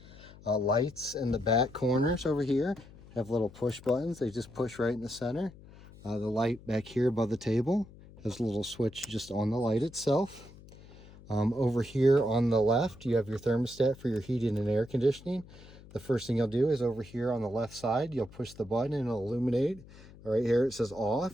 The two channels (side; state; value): left; noise; hum, 20 dB below the sound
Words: Lights in the back corners over here have little push buttons. They just push right in the center. The light back here above the table has a little switch just on the light itself. Over here on the left, you have your thermostat for your heating and air conditioning. The first thing you'll do is over here on the left side, you'll push the button and it'll illuminate. Right here it says